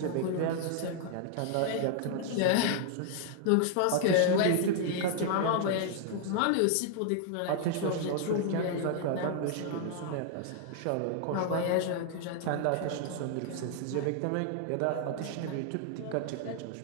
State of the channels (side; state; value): both; different; correlation 0.00